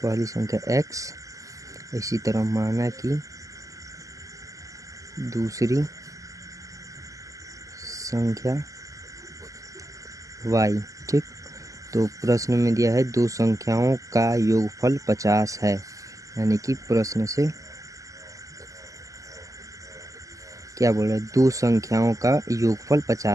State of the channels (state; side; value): late; left; 0.16 ms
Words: x, इसी तरह माना कि दूसरी संख्या y। ठीक, तो प्रश्न में दिया है दो संख्याओं का योगफल 50 है, यानी कि प्रश्न से क्या बोल रहा है, दो संख्याओं का योगफल